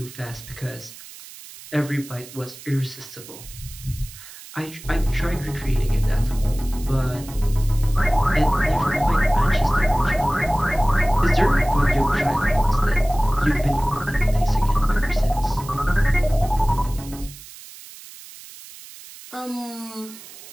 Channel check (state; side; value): noise; right; hiss, 17 dB below the sound